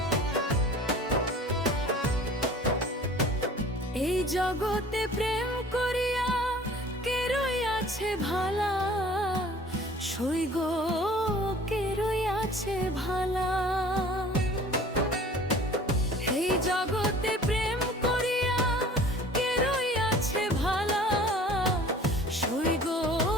এই জগতে প্রেম করিয়া কে রইয়াছে ভালা। সইগ কে রইয়াছে ভালা। এই জগতে প্রেম করিয়া কে রইয়াছে ভালা। সইগ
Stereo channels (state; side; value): normal; both; correlation 0.47